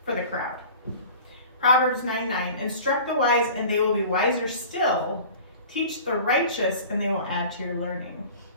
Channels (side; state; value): both; inverted; correlation -0.42